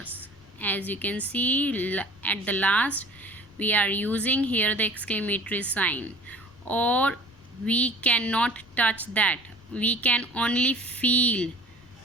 As you can see at the last, we are using here the exclamatory sign. Or we cannot touch that. We can only feel.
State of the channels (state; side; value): noise; left; rumble, 26 dB below the sound